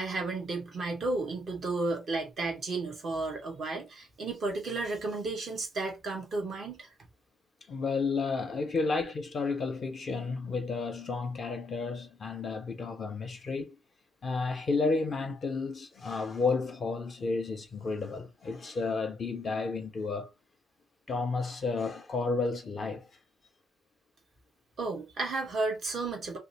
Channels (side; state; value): both; normal; correlation 0.74